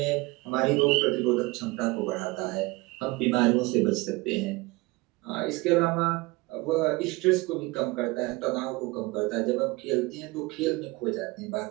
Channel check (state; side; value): quieter; left; 22.8 dB